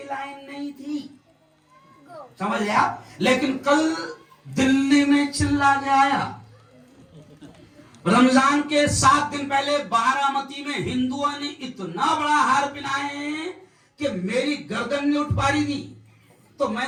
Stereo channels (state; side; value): identical; both; correlation 1.00